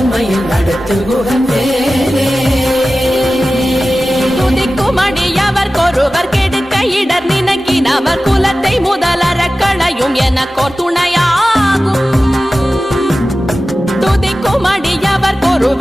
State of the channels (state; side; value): normal; both; correlation 0.95